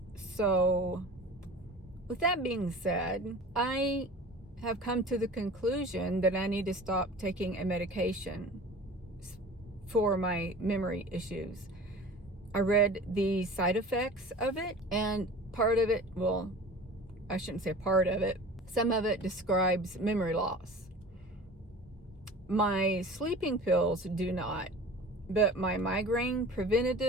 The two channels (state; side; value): normal; both; correlation 0.39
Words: So, with that being said, I have come to the conclusion that I need to stop taking a medication for my memory issues. I read the side effects of it, and part of it, well, I shouldn't say part of it, some of it describes memory loss. My sleeping pills do not, but my migraine